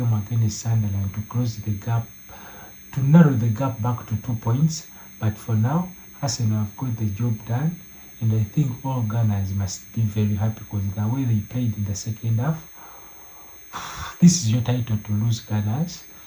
against Sunderland to close the gap, to narrow the gap back to 2 points. But for now, Arsenal have got the job done, and I think all Gunners must be very happy, because the way they played in the second half, this is your title to lose, Gunners.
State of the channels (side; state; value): both; identical; correlation 1.00